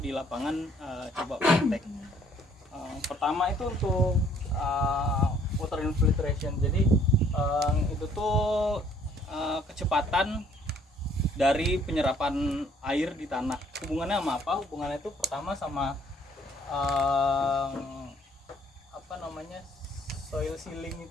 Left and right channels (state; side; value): normal; both; correlation 0.61